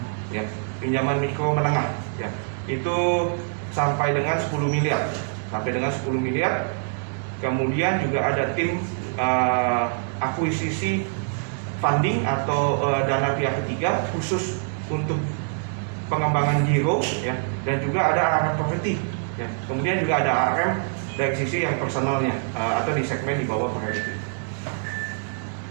ya, pinjaman mikro menengah ya. Itu sampai dengan 10 miliar. Kemudian juga ada tim akuisisi funding atau dana pihak ketiga khusus untuk pengembangan giro ya, dan juga ada ARM property ya. Kemudian juga ada ARM dari sisi yang personalnya atau di segmen di bawah priority.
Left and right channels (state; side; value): silent; left; digital silence